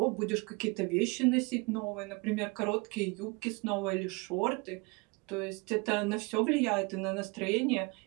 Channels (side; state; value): left; quieter; 28.1 dB